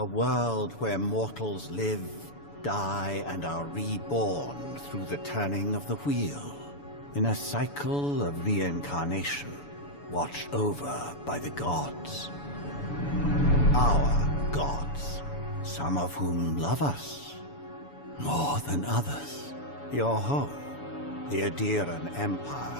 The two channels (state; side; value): late; right; 7.0 ms